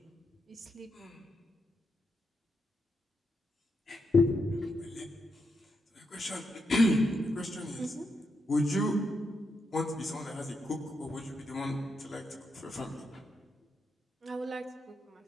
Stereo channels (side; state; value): both; normal; correlation 0.83